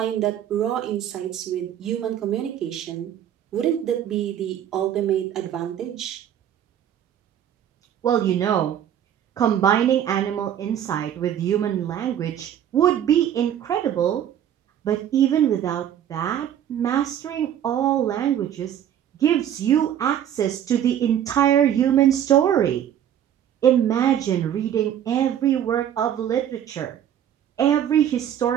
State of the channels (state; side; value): quieter; left; 10.2 dB